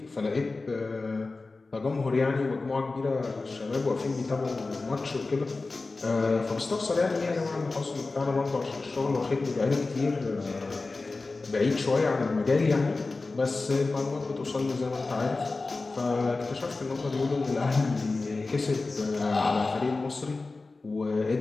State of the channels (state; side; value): quieter; right; 3.6 dB